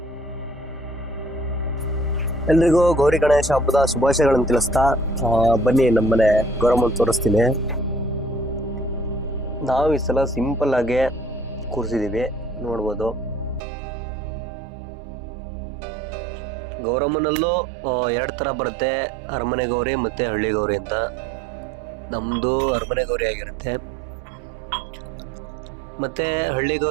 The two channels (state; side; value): drops out; left; at 13.6 s